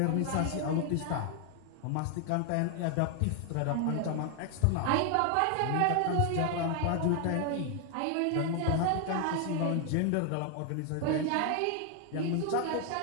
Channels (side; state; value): both; different; correlation 0.00